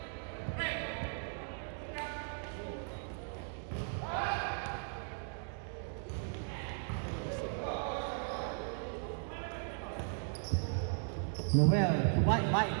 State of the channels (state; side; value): silent; left; 53 dB below the other